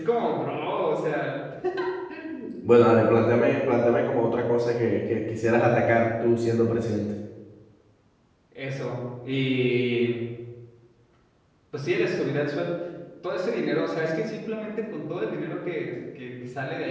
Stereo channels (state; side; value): identical; both; correlation 1.00